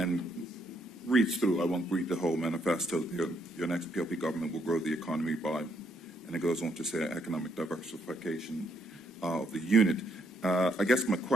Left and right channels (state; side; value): normal; both; correlation 0.73